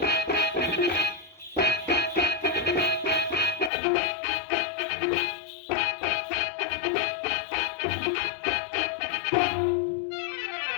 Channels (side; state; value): right; drops out; at 3.7 s